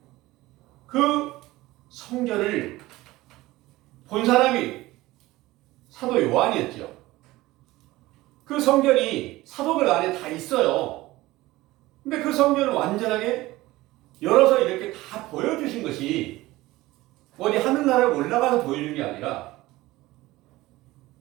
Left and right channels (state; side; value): quieter; left; 18.4 dB